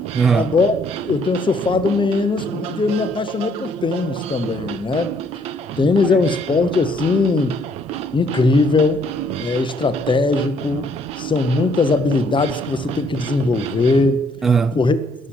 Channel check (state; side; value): normal; both; correlation 0.67